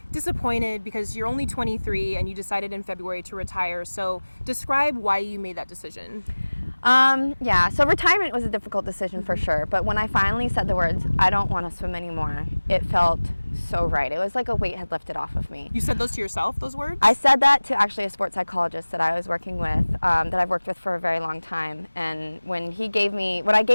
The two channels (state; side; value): inverted; both; correlation -1.00